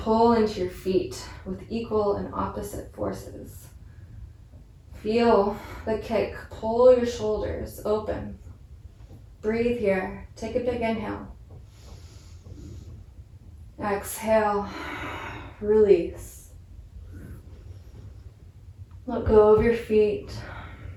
into your feet with equal and opposite forces. Feel the kick, pull your shoulders open. Breathe here, take a big inhale. Exhale, release. Let go of your feet.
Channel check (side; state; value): both; identical; correlation 1.00